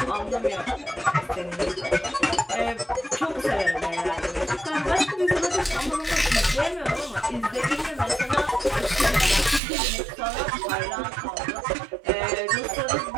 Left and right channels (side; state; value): left; drops out; at 9.6 s